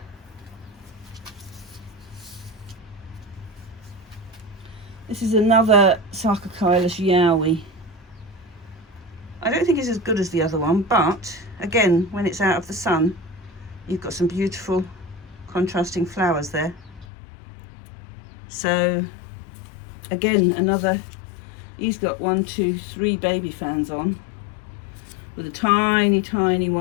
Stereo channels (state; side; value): drops out; right; at 17.1 s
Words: This is another Sarcochilus Yowie. I don't think it's as good as the other one, but again, when it's out of the sun, you've got some beautiful contrasting flowers there. So again, another, he's got 1, 2, 3 baby fans on, with a tiny, tiny